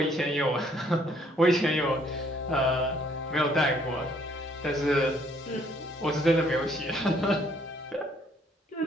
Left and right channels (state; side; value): normal; both; correlation 0.65